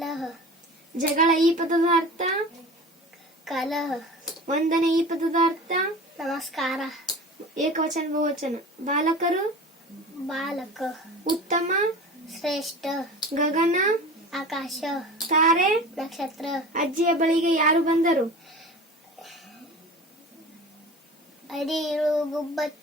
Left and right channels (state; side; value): normal; both; correlation 0.36